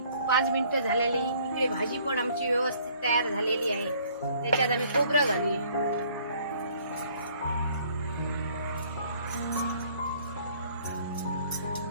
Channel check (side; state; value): both; inverted; correlation -0.59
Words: 5 मिनिटं झालेली. इकडे भाजी पण आमची व्यवस्थित तयार झालेली आहे. त्याच्यात आम्ही खोबरं घालूया.